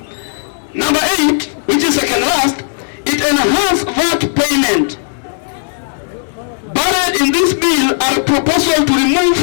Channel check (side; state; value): right; silent; digital silence